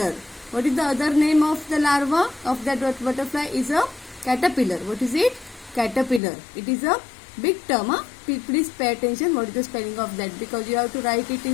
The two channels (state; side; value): drops out; right; at 6.2 s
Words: What is the other name of the larva of that butterfly? Is a caterpillar. What is it? Caterpillar. It is a big term. Please pay attention what is the spelling of that, because you have to write it